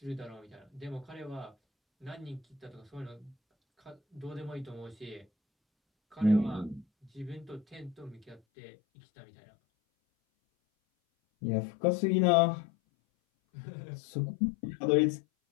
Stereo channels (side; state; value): right; drops out; at 8.4 s